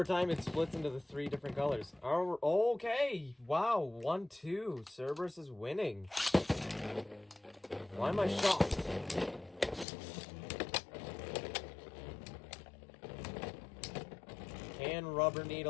time, it splits into the 3 different colors. Oh, okay. Wow, 1-2. Cerberus is winning. Why am I shocked? Can Rubber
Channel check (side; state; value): right; drops out; at 9.9 s